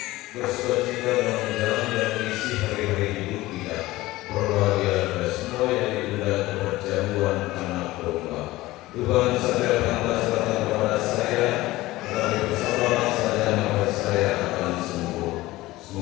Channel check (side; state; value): right; quieter; 18.2 dB